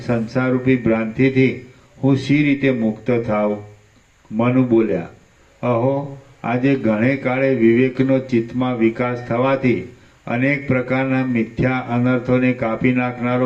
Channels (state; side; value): identical; both; correlation 1.00